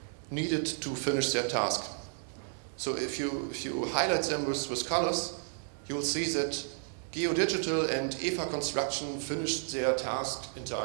needed to finish their task. So if you highlight them with colors, you will see that Geodigital and EVA Construction finished their task in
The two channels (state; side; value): silent; left; digital silence